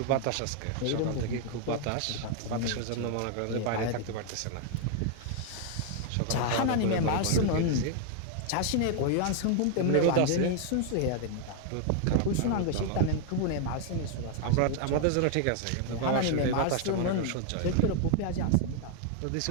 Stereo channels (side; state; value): both; different; correlation 0.00